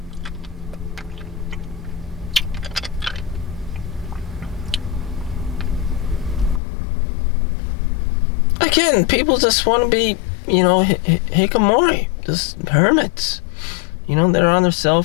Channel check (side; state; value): right; drops out; at 6.6 s